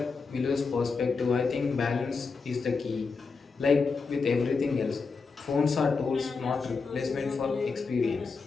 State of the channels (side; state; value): right; quieter; 4.7 dB